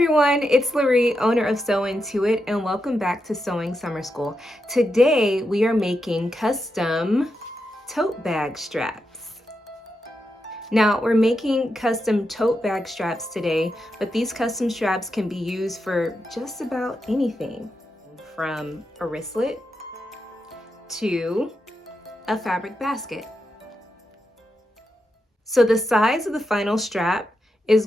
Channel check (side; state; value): both; normal; correlation 0.86